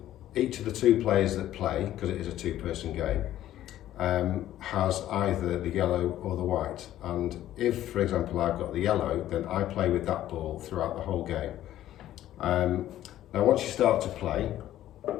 each of the 2 players that play, because it is a 2-person game, has either the yellow or the white, and if for example I've got the yellow, then I play with that ball throughout the whole game. Now once you start to play,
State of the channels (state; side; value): quieter; right; 13.0 dB